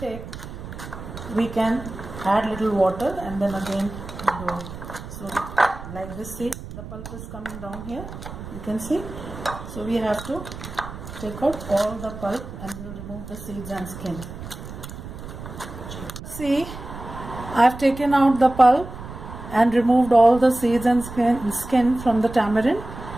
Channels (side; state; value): right; noise; rumble, 12 dB below the sound